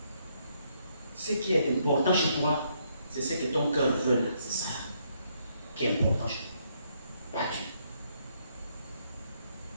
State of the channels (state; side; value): inverted; both; correlation -0.72